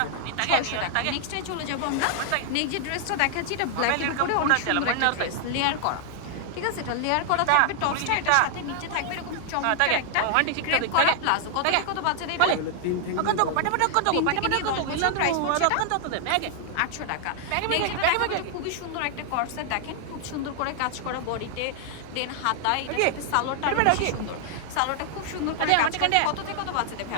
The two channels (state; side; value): different; both; correlation 0.00